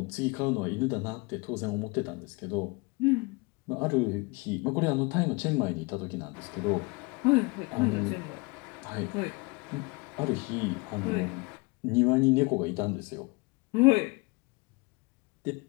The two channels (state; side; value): quieter; right; 27.4 dB